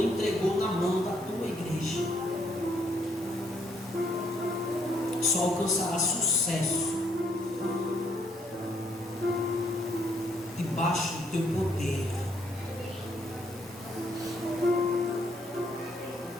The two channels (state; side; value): normal; both; correlation 0.70